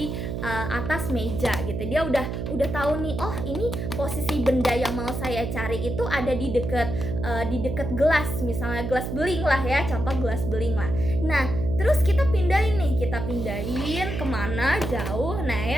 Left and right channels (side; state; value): right; noise; hum, 4 dB below the sound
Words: atas meja gitu. Dia udah tahu nih, oh ini posisi benda yang mau saya cari itu ada di deket gelas, misalnya gelas beling lah ya, contoh gelas beling lah. Nah, terus kita pindahin kemana jauh. Nah